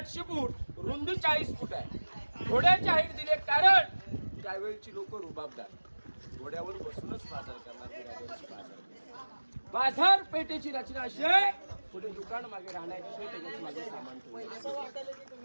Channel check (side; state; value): both; inverted; correlation -1.00